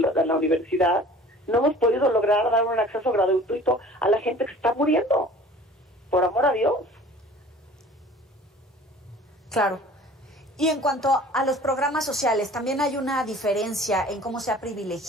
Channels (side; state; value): both; normal; correlation 0.47